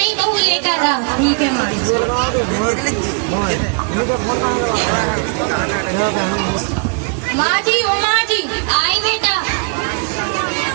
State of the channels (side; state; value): left; quieter; 38.3 dB